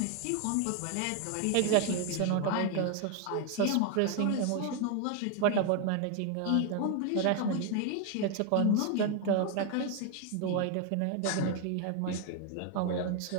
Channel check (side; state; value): both; different; correlation 0.01